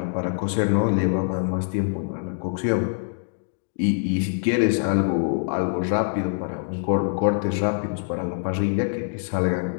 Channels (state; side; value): silent; right; digital silence